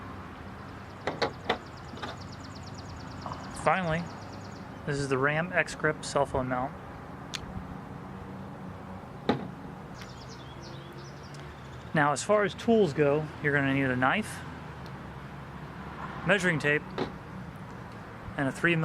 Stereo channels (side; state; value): both; identical; correlation 1.00